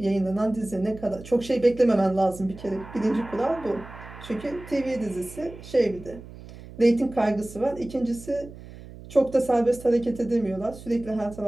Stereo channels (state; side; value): noise; right; hum, 16 dB below the sound